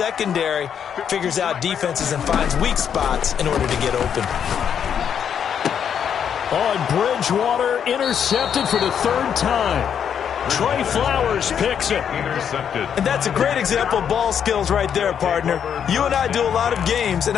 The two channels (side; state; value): right; quieter; 8.2 dB